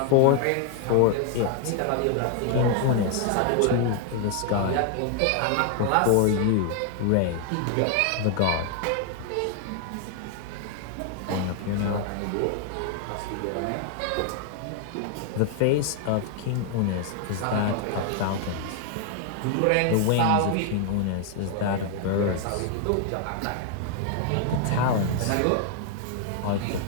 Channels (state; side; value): different; both; correlation 0.00